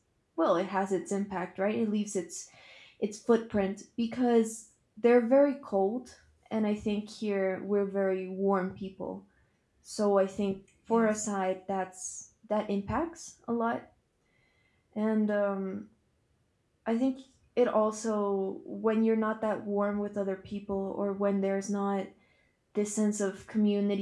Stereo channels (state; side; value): identical; both; correlation 1.00